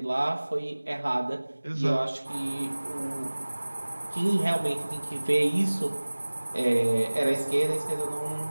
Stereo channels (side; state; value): both; inverted; correlation -1.00